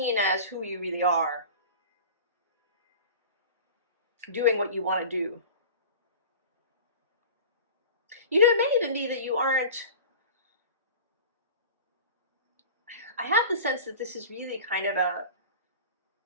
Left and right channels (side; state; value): both; inverted; correlation -0.37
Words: as who you really are. Doing what you want to do. It may even be that you aren't. I have the sense that this is really kind of